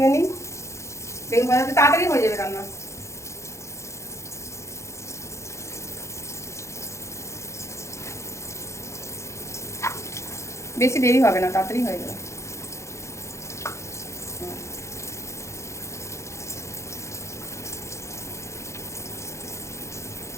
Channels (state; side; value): late; right; 0.14 ms